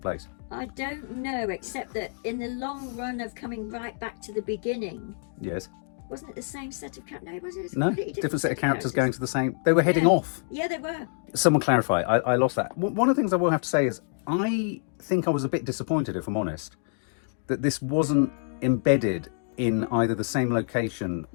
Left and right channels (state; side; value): silent; right; digital silence